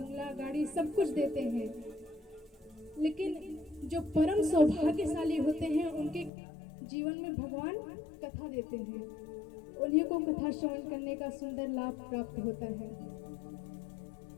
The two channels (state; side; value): drops out; right; at 6.3 s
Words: गाड़ी सब कुछ देते हैं, लेकिन जो परम सौभाग्यशाली होते हैं उनके जीवन में भगवान कथा देते हैं। उन्हीं को कथा श्रवण करने का सुंदर लाभ प्राप्त होता है।